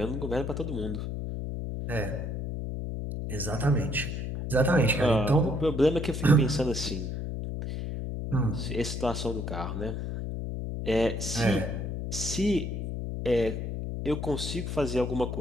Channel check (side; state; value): left; noise; hum, 4 dB below the sound